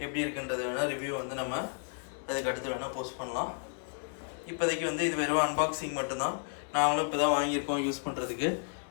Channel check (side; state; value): right; silent; 56 dB below the other